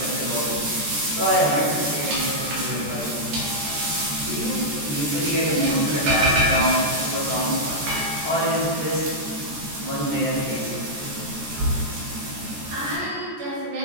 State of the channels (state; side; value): late; left; 14 ms